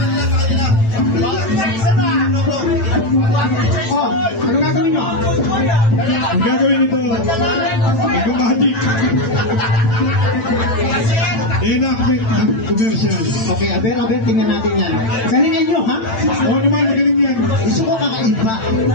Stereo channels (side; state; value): right; late; 9.0 ms